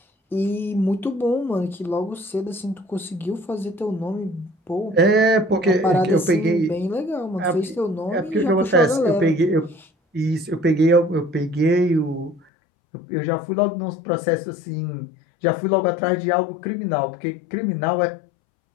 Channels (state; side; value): drops out; right; at 12.4 s